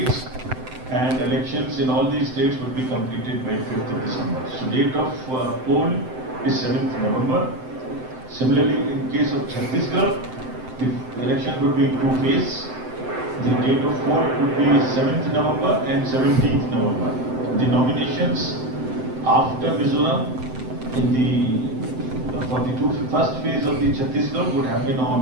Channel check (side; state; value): left; late; 7.8 ms